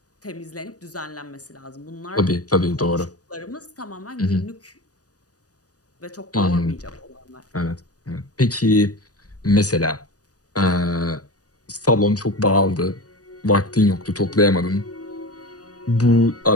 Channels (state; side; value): late; right; 0.67 ms